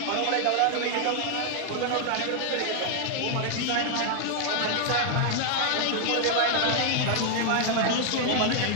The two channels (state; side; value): different; both; correlation 0.00